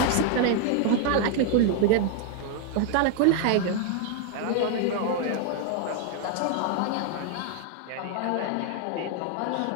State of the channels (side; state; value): both; different; correlation 0.00